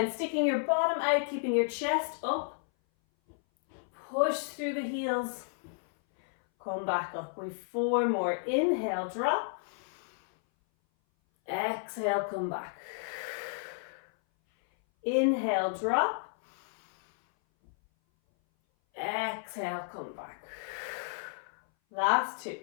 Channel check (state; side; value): silent; right; 56 dB below the other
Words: sticking your bottom out, keeping your chest up. Push through the heels, come back up. We've 4 more. Inhale, drop. Exhale, come back. Inhale, drop. Exhale, come back. Last 2.